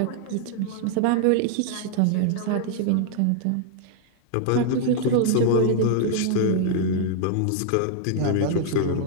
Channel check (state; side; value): different; both; correlation 0.00